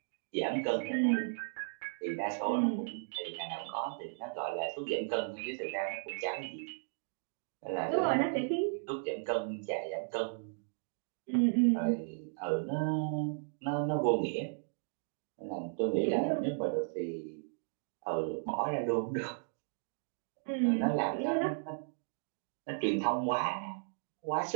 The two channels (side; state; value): left; silent; digital silence